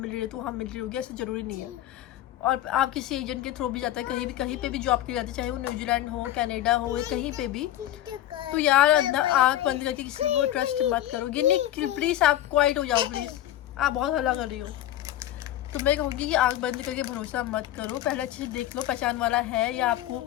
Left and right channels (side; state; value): right; quieter; 13.0 dB